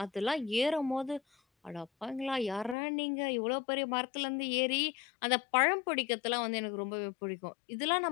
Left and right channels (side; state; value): right; drops out; at 2.8 s